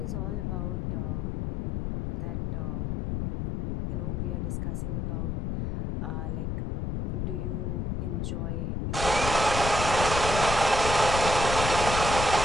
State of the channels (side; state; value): left; noise; rumble, 2 dB below the sound